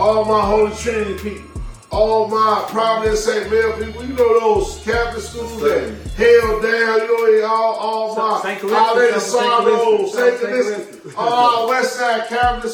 my Holy Trinity people. All my Providence St. Mel people, you know those Catholic schools that held down, you know, all my Lady Sorrow, St. Calista, all Westside Catholic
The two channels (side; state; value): both; identical; correlation 1.00